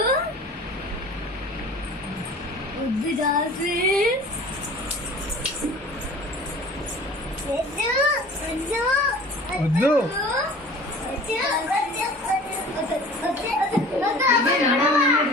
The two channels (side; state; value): both; normal; correlation 0.44